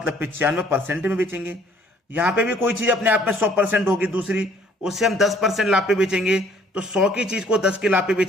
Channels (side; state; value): both; normal; correlation 0.60